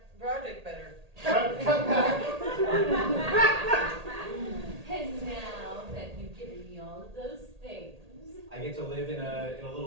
project better. Cut back. And now that you've given me all of those things. I get to live in a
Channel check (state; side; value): late; left; 1.8 ms